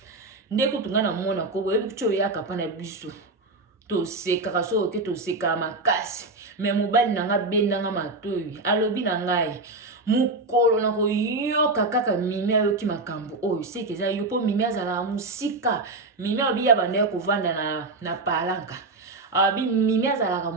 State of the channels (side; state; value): left; quieter; 3.2 dB